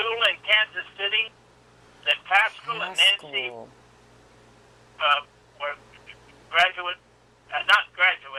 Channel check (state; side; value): identical; both; correlation 1.00